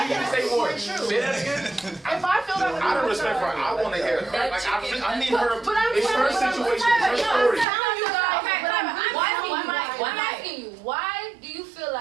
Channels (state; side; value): drops out; left; at 7.7 s